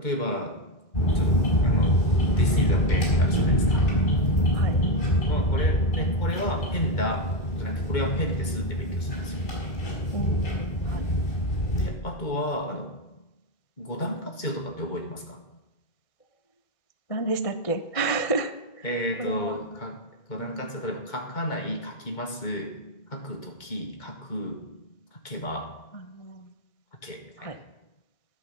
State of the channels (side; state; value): right; late; 2.2 ms